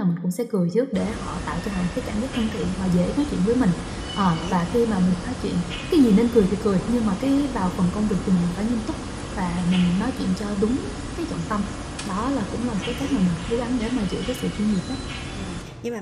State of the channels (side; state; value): both; identical; correlation 1.00